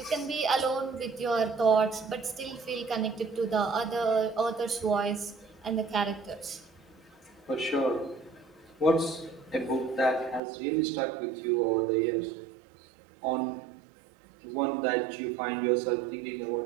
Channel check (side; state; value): left; drops out; at 10.4 s